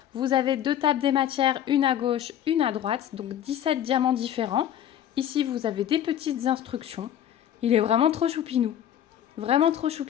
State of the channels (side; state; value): right; quieter; 10.6 dB